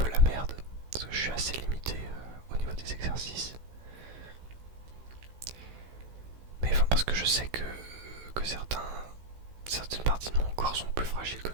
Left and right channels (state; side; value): late; left; 16 ms